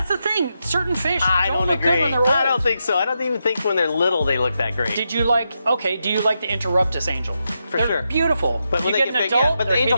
the thing. Certain fish I don't don't look agree. good when they're old. I don't think so. I don't even think when they're little they look that great. Do you like the Interruptus angel? For They're sure. beautiful. But when you they get get an big, adult, yeah, but the they're angelfish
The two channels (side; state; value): both; inverted; correlation -0.85